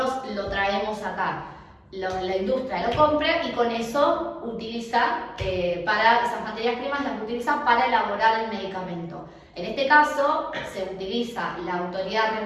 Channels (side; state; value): both; identical; correlation 1.00